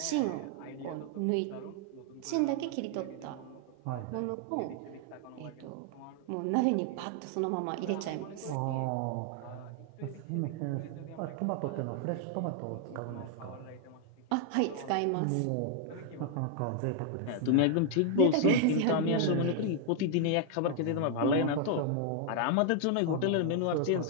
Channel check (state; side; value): different; both; correlation 0.00